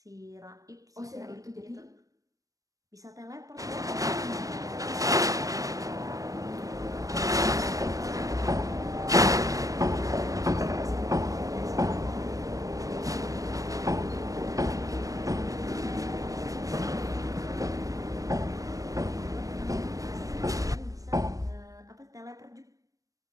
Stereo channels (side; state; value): left; late; 0.16 ms